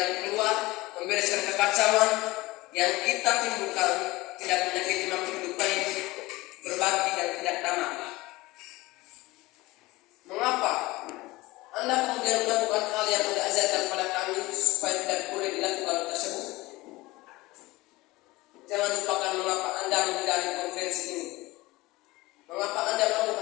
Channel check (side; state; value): right; quieter; 20.4 dB